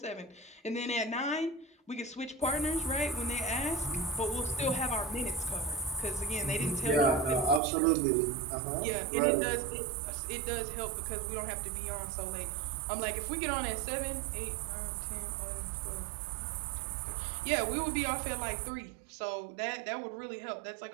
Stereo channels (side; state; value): left; drops out; at 7.6 s